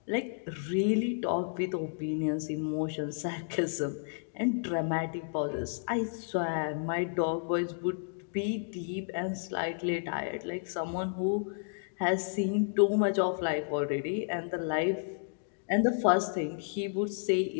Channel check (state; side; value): silent; right; digital silence